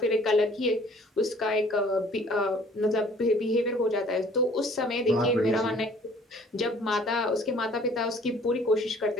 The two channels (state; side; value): normal; both; correlation 0.54